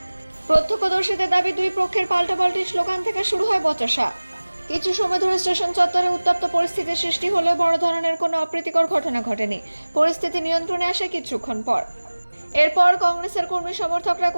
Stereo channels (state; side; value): inverted; both; correlation -1.00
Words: প্রত্যক্ষদর্শীদের দাবি, দুই পক্ষের পাল্টাপাল্টি স্লোগান থেকে শুরু হয় বচসা। কিছু সময় ধরে স্টেশন চত্বরে উত্তপ্ত পরিস্থিতির সৃষ্টি হলেও বড় ধরনের কোনো অপ্রীতিকর ঘটনা ঘটেনি। পরিস্থিতি নিয়ন্ত্রণে আসে কিছুক্ষণ পর। এরপর কংগ্রেসের কর্মী সমর্থকরা